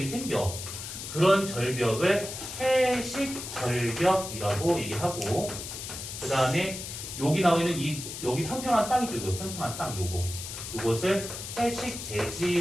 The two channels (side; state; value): left; noise; hiss, 8 dB below the sound